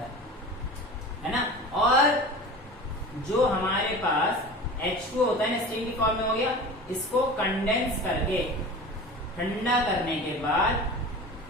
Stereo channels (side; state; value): both; normal; correlation 0.36